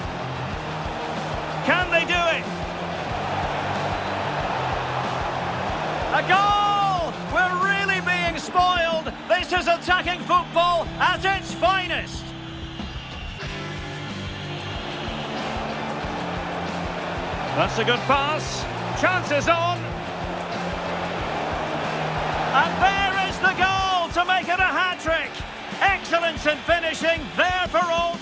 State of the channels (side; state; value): both; identical; correlation 1.00